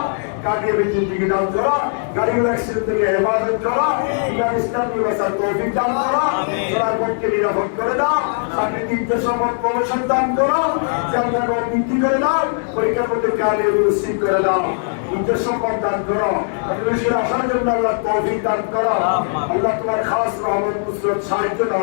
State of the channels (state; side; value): silent; right; digital silence